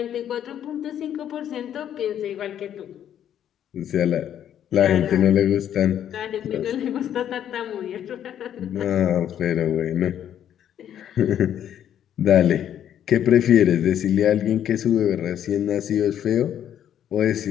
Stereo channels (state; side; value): quieter; right; 10.1 dB